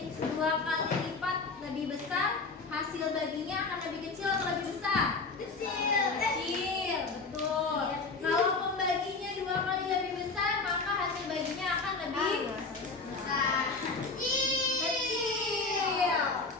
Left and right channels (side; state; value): right; quieter; 4.0 dB